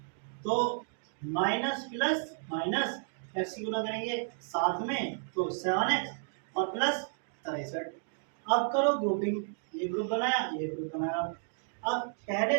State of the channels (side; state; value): left; silent; digital silence